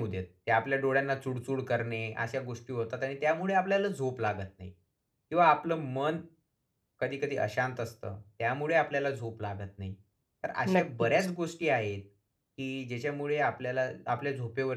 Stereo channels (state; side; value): identical; both; correlation 1.00